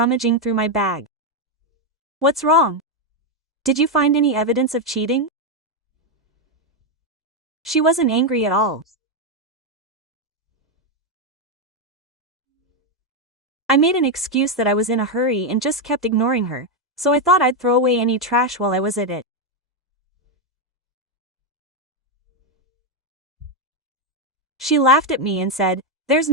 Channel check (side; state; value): both; normal; correlation 0.04